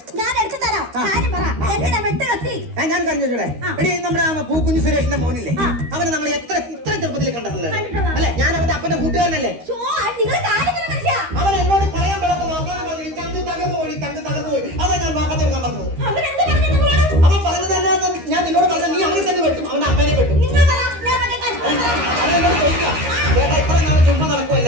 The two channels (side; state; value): left; late; 13 ms